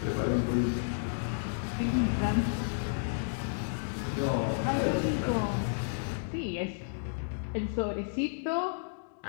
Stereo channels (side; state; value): right; silent; digital silence